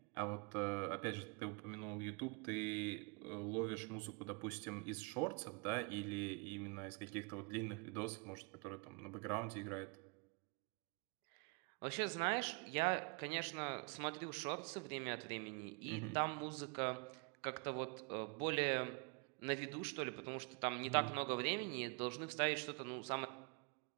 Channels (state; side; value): quieter; left; 33.2 dB